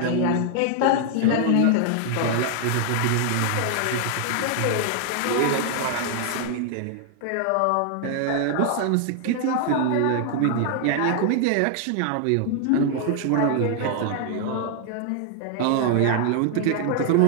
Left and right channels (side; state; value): both; different; correlation 0.00